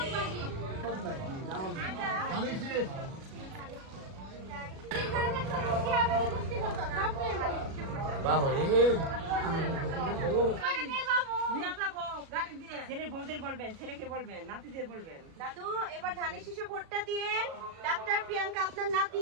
ছেলে বউদের বলবেন, ছেলেকে বলবেন, নাতিদের বলবেন। দাদু এবার ধানের শীষে ভোটটা দিয়েন। ডাক্তার প্রিয়াঙ্কা আপনার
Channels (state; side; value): late; left; 37 ms